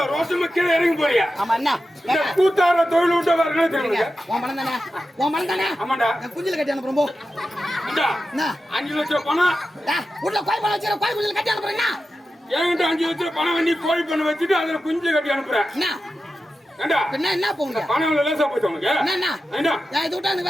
ரோசமா கீழே இறங்கி போறியா ஆமா என்ன இந்த கூத்தார தொழில் விட்டு வரணும் தெரியுங்க உன் பணம் தானே ஆமாண்டா குஞ்சில கட்டி அனுப்புறோம் போ 5 லட்சம் பணம் உள்ள கோய் பணம் வச்சிர கோய் குஞ்சில கட்டி அனுப்புறேன் என்கிட்ட 5 லட்சம் பணம் பண்ணி கோழி பண்ண வச்சுட்டு அதுல குஞ்சு கட்டி அனுப்புறேன் என்ன போங்க பணம் லேசா போச்சு உனக்கு என்ன இது விட்டா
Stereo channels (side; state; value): both; normal; correlation 0.92